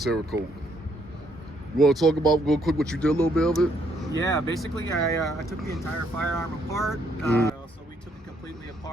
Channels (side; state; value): both; normal; correlation 0.70